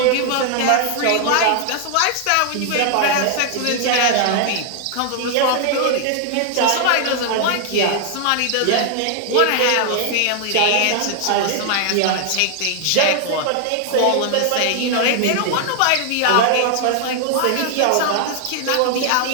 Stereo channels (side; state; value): both; different; correlation 0.00